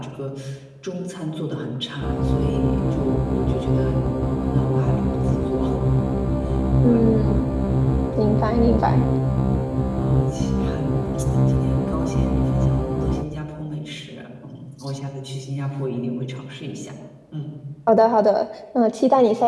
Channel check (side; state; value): both; identical; correlation 1.00